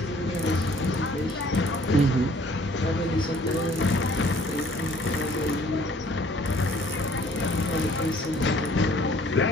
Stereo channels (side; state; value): both; normal; correlation 0.57